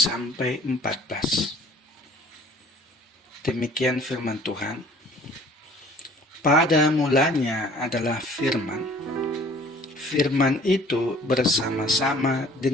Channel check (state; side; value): normal; both; correlation 0.52